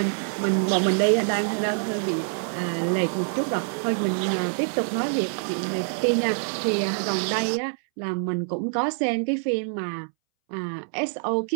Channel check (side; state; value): left; silent; 61 dB below the other